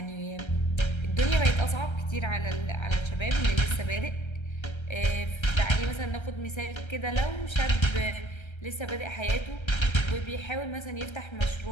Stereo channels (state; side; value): late; right; 1.3 ms